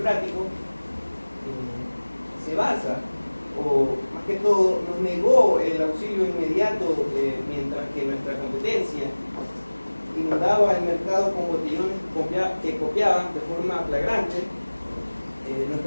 se basa, o más que todo, nos negó el auxilio inmediato mientras que nuestra competencia inundaba el mercado con botellones que copiaban de forma flagrante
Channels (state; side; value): inverted; both; correlation -1.00